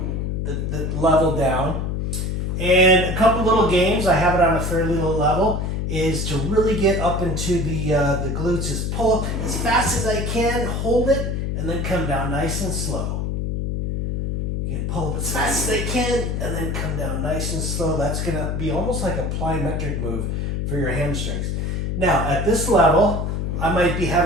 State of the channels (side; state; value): left; noise; hum, 1 dB below the sound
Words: level down. And a couple little games, I have it on a fairly low level, is to really get up into the glutes, is pull up as fast as I can, hold it, and then come down nice and slow. You can pull up as fast as they can and then come down nice and slow. That's going to be almost like a plyometric move for your hamstrings. Now, at this level, I might be